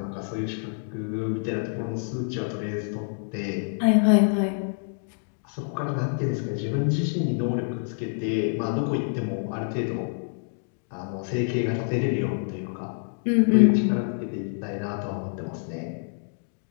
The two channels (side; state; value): right; silent; digital silence